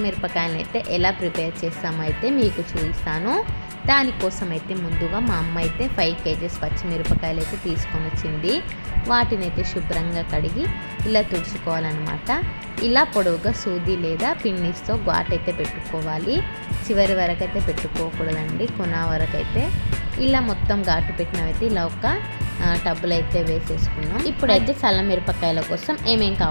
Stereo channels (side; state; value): both; inverted; correlation -1.00